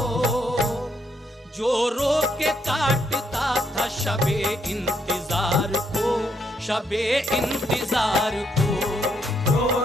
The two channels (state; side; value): normal; both; correlation 0.75